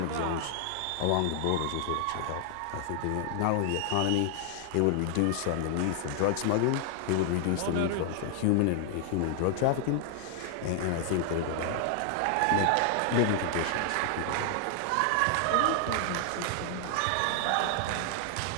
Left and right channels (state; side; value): different; both; correlation 0.00